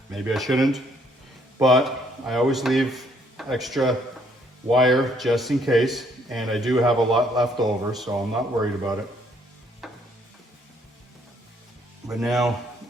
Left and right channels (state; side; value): normal; both; correlation 0.66